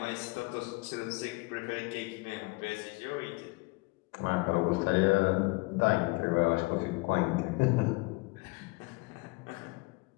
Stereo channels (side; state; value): right; quieter; 25.0 dB